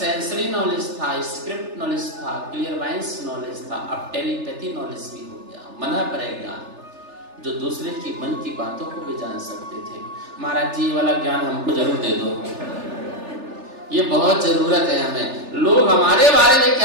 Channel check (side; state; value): left; late; 3.4 ms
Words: नॉलेज था, स्क्रिप्ट नॉलेज था, क्लियरवाइंस नॉलेज था, अब टेलीपैथी नॉलेज भी हो गया। मन पर ज्ञान, जो दूसरे की मन की बातों को भी जान सकते थे। महाराज जी, ये वाला ज्ञान हमको जरूर दे दो, ये बहुत जरूरत है हमें। लोग हमारे बारे में